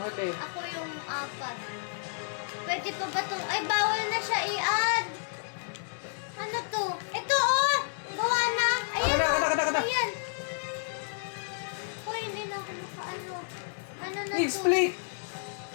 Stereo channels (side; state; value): right; silent; digital silence